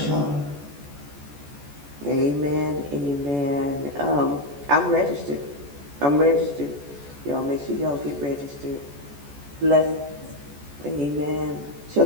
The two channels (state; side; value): late; left; 14 ms